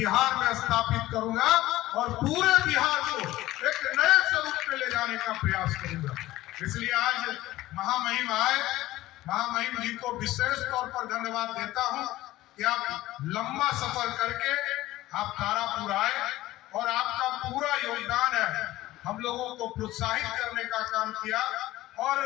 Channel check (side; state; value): right; quieter; 16.5 dB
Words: में स्थापित करूंगा, और पूरे बिहार को एक नए स्वरूप में ले जाने का प्रयास करूंगा। इसलिए आज महामहिम आए, महामहिम जी को विशेष तौर पर धन्यवाद देता हूं कि आप लंबा सफर करके आप तारापुर आए, और आपका पूरा योगदान है हम लोगों को प्रोत्साहित करने का काम किया। और